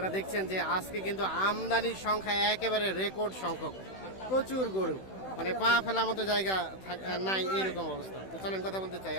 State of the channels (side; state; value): right; late; 16 ms